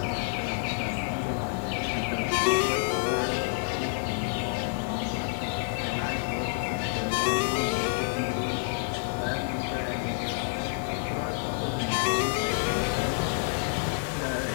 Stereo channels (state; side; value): silent; right; 59 dB below the other